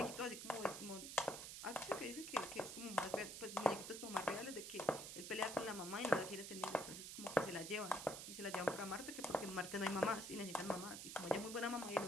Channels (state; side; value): noise; right; hiss, 7 dB below the sound